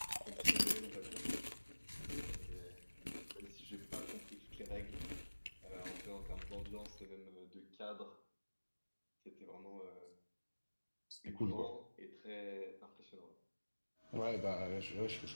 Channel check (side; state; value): both; inverted; correlation -1.00